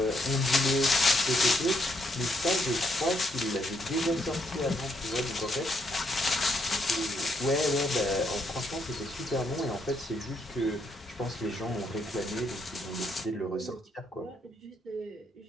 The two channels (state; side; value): normal; both; correlation 0.75